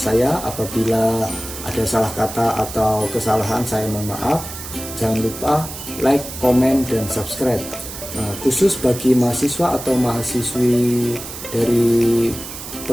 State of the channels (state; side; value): noise; right; hiss, 10 dB below the sound